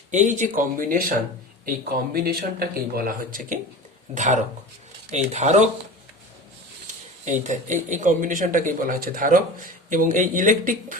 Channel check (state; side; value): normal; both; correlation 0.32